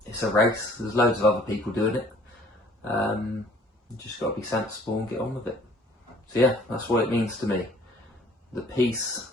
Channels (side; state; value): both; normal; correlation 0.55